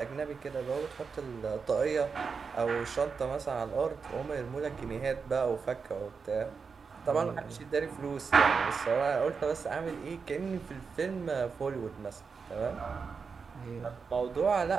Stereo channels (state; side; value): quieter; left; 5.4 dB